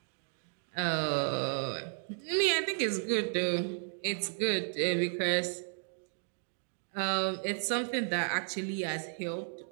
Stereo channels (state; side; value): silent; left; 55 dB below the other